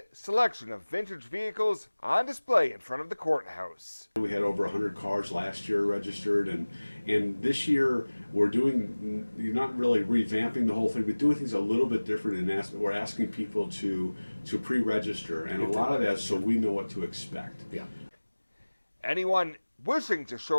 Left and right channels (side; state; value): both; inverted; correlation -1.00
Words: selection of vintage vehicles on display in front of the courthouse. We had over 100 cars last year registered, and this year we're not really revamping the whole thing, but doing things a little bit different, and we're asking people to pre-register, and a lot of that so we know what to expect. Yeah. Anyone wishing to